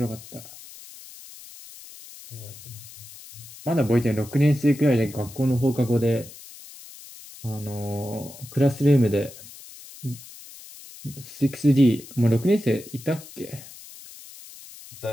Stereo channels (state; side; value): noise; left; hiss, 17 dB below the sound